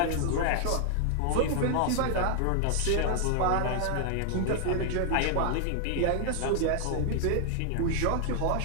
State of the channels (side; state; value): both; different; correlation 0.00